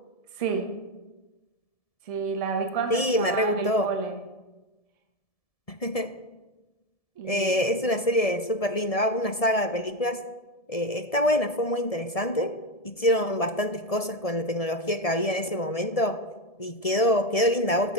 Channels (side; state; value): right; late; 1.7 ms